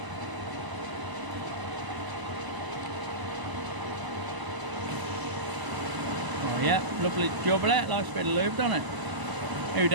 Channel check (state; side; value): late; left; 1.0 ms